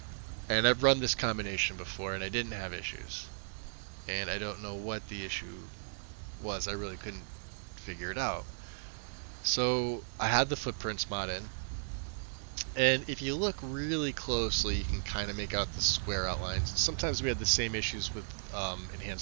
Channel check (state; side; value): silent; left; digital silence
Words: and I've run this combination before and I didn't have issues. And I don't know what the issue was. I really couldn't figure it out. So I had the footprints mod in. And if you look really closely, you can kind of make out the square outlines. Sometimes we had the same issues with